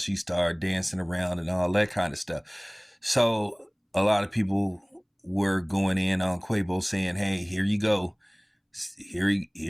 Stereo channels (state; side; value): identical; both; correlation 1.00